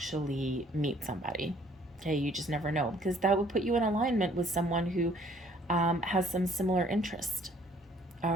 meet somebody. Okay, you just never know, because that would put you in alignment with someone who has some similar interest,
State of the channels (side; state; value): both; normal; correlation 0.59